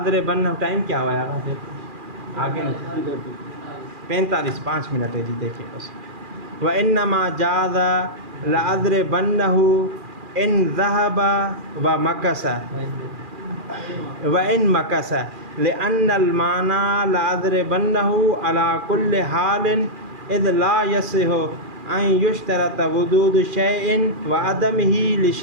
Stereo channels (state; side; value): late; left; 2.4 ms